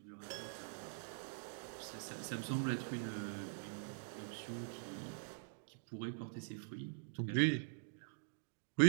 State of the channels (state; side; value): silent; left; digital silence